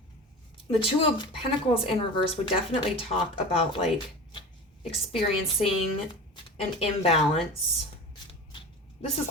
The Two of Pentacles in reverse would definitely talk about like experiencing an imbalance. This is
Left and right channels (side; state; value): both; normal; correlation 0.33